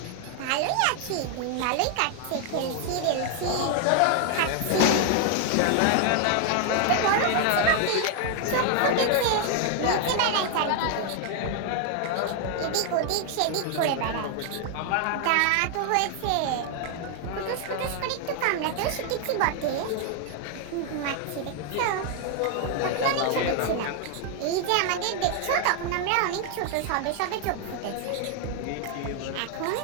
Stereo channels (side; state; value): both; different; correlation 0.00